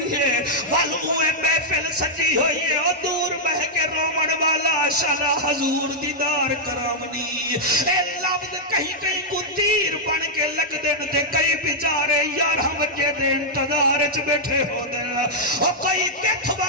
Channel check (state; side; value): normal; both; correlation -0.05